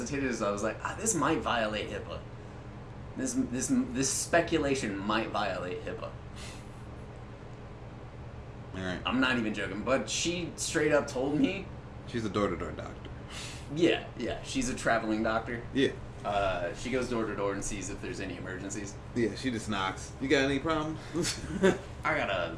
is I was like, this might violate HIPAA. This speculation might violate HIPAA. Alright. I'm not even joking, but she straight up told me. She's a door-to-door doctor. Yeah, she's a traveling doctor. Yeah. She goes door to door and sees if there's any emergencies. Yeah, she just knocks. You got any problems? I got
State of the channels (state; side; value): identical; both; correlation 1.00